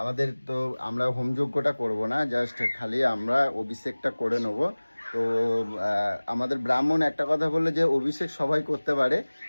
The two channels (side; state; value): both; inverted; correlation -1.00